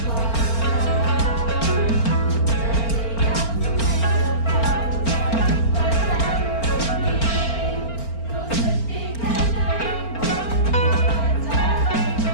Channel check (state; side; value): late; right; 4.4 ms